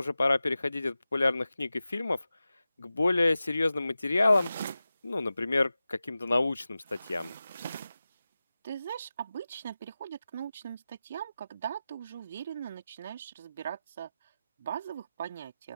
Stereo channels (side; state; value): both; inverted; correlation -0.94